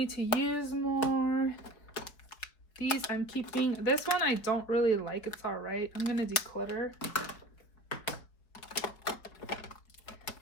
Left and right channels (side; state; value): right; late; 4.5 ms